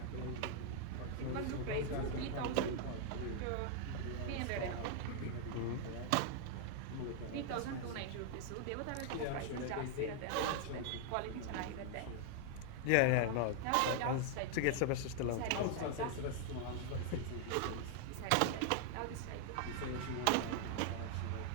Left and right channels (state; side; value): different; both; correlation 0.00